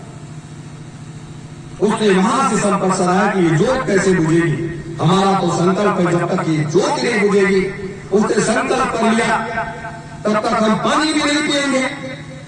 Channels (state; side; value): identical; both; correlation 1.00